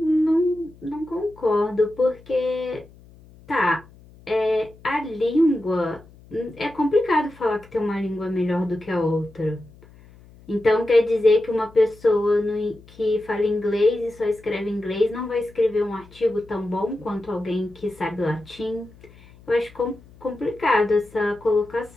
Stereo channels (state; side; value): noise; left; hum, 24 dB below the sound